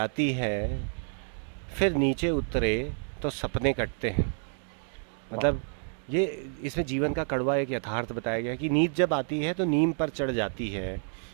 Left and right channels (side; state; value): left; silent; 58 dB below the other